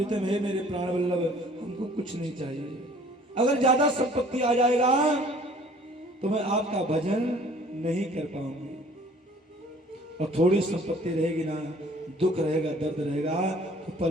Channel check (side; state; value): both; normal; correlation 0.53